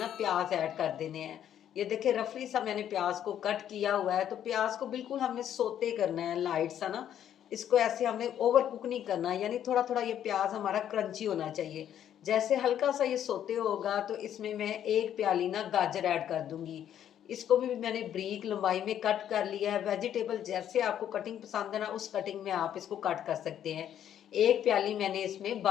प्याज ऐड कर देने हैं। ये देखिए रफली सा मैंने प्याज को कट किया हुआ है। तो प्याज को बिल्कुल हमने सोते करना है, लाइट सा ना। इसको ऐसे हमने ओवर कुक नहीं करना, यानी थोड़ा थोड़ा ये प्याज हमारा क्रंची होना चाहिए। जैसे हल्का सा ये सोते होगा तो इसमें मैं 1 प्याली ना गाजर ऐड कर दूंगी। इसको भी मैंने ब्रीक लंबाई में कट कर लिया है। वेजिटेबल जैसे आपको कटिंग पसंद है ना, उस कटिंग में आप इसको कट कर सकते हैं। 1 प्याली मैंने इसमें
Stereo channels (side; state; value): right; quieter; 10.3 dB